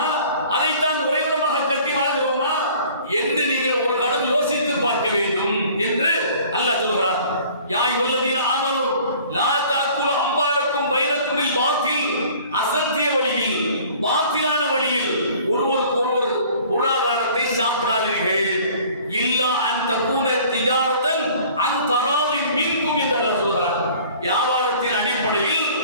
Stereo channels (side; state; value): both; inverted; correlation -0.50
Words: அதைத்தான் உறைவிடமாக கட்டி வாழ்கிறோமா என்று நீங்கள் ஒரு கணம் யோசித்து பார்க்க வேண்டும் என்று அல்லாஹ் சொல்கிறார். யா அய்யுஹல்லதீன ஆமனூ லா தஅக்குலு அம்வாலக்கும் பைனக்குமில் பாத்தில், அசத்திய வழியில், பாத்திலான வழியில் ஒருவருக்கு ஒருவர் பொருளாதாரத்தை சாப்பிடாதீர்கள். இல்லா அன் தகூன திஜாரத்தன் அன் தராலின் மின்கும் என்று அல்லாஹ் சொல்கிறார். வியாபாரத்தின் அடிப்படையில்